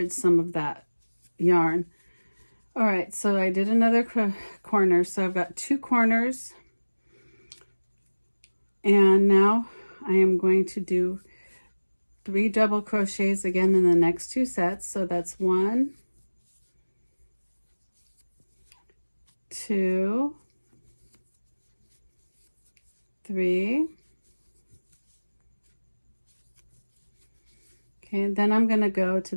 some of that yarn. All right, so I did another corner. So I've got 2 corners, and now I am going to do 3 double crochets again in the next 2 sets. So that's 1, 2, 3. Okay, and then I'm going to go to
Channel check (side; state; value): both; inverted; correlation -1.00